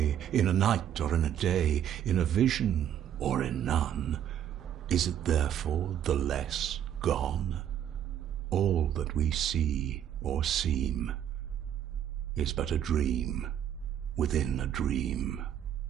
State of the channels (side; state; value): left; quieter; 10.2 dB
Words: in a night or in a day, in a vision or in none, is it therefore the less gone? All that we see or seem is but a dream within a dream.